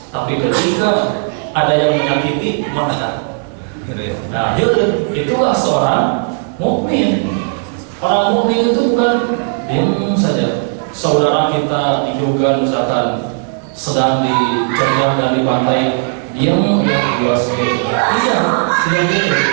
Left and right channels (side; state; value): left; silent; 61 dB below the other